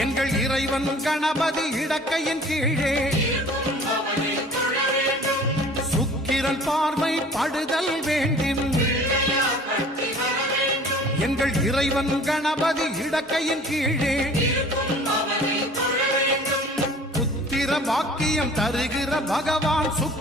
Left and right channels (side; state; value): both; normal; correlation 0.48